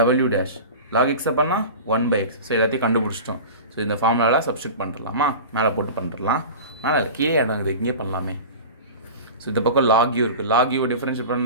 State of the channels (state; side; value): inverted; both; correlation -0.33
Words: dash log எக்ஸை பண்ணால் 1/x. ஸோ எல்லாத்தையும் கண்டுபிடிச்சிட்டோம். ஸோ இந்த ஃபார்முலாவில் சப்ஸ்டியூட் பண்ணிடலாமா? மேலே போட்டு பண்ணிடலாம். மேலே கீழே இடங்குது, இங்கே பண்ணலாமே. ஸோ இந்த பக்கம் லாக் யூ இருக்குது. லாக் யூ டிஃப்ரென்ஷியேட்